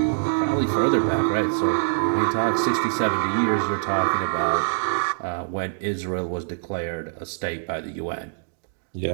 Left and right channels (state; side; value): silent; left; digital silence